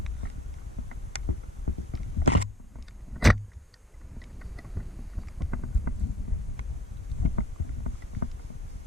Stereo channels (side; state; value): both; normal; correlation 0.54